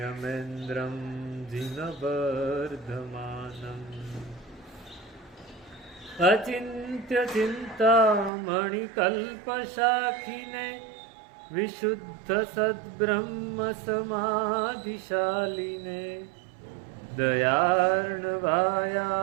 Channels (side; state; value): left; drops out; at 8.3 s